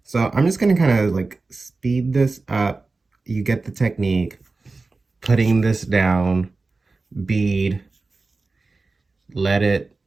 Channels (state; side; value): quieter; left; 3.7 dB